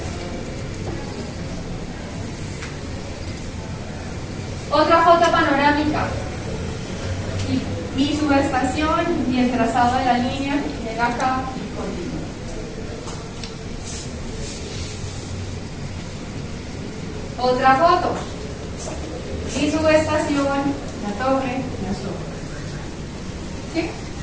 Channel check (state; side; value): identical; both; correlation 1.00